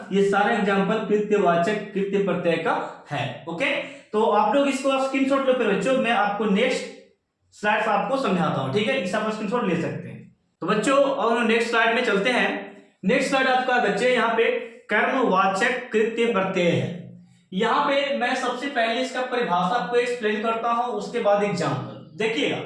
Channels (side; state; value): both; identical; correlation 1.00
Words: ये सारे एग्जाम्पल कृत्यवाचक कृत्य प्रत्यय का है। ओके, तो आप लोग इसको स्क्रीनशॉट लो फिर बच्चों, मैं आपको नेक्स्ट स्लाइड आपको समझाता हूं। ठीक है, इस आप स्क्रीनशॉट ले सकते हैं। तो बच्चों और नेक्स्ट स्लाइड में चलते हैं। नेक्स्ट स्लाइड आपका बच्चे यहाँ पे कर्मवाचक कृत्य प्रत्यय है। यहाँ पे मैं सबसे पहले इसका परिभाषा आपको एक्सप्लेन करता हूं, उसके बाद एग्जाम्पल देखिएगा।